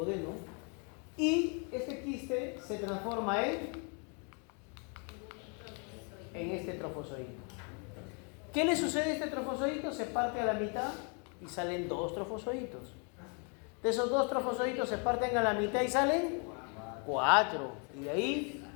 y este quiste se transforma en este trofozoito. ¿Qué le sucede a este trofozoito? Se parte a la mitad y salen 2 trofozoitos. De esos 2 trofozoitos se parten a la mitad y salen 4. Y de ahí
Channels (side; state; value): right; quieter; 37.1 dB